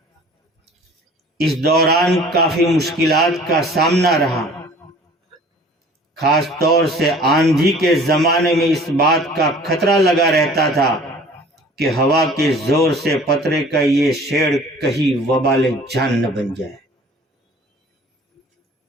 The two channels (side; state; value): both; normal; correlation 0.48